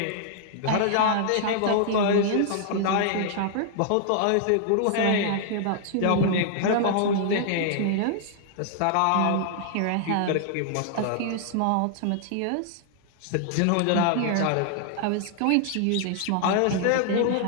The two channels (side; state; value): both; different; correlation -0.01